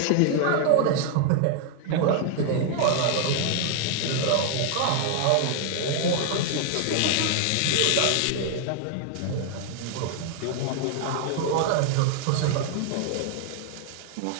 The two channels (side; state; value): both; different; correlation 0.00